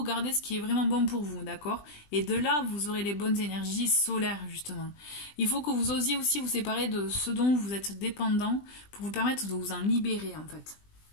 Gardez ce qui est vraiment bon pour vous, d'accord? Et de là, vous aurez les bonnes énergies solaires, justement. Il faut que vous osiez aussi vous séparer de ce dont vous êtes dépendant pour vous permettre de vous en libérer, en fait.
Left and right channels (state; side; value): late; right; 20 ms